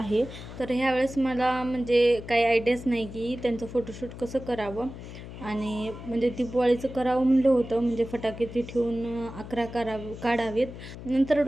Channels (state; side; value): noise; left; hum, 12 dB below the sound